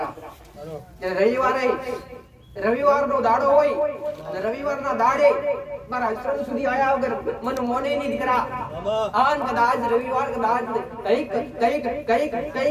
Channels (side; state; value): both; identical; correlation 1.00